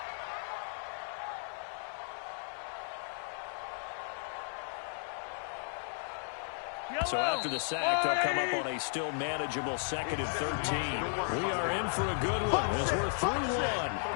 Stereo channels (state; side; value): silent; right; 55 dB below the other